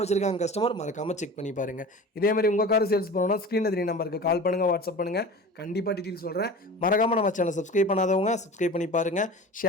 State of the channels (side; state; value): both; normal; correlation 0.36